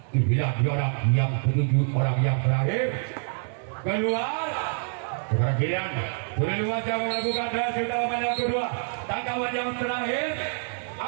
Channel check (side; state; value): left; silent; 61 dB below the other